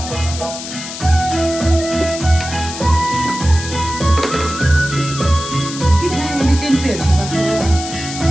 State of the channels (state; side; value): noise; left; hiss, 9 dB below the sound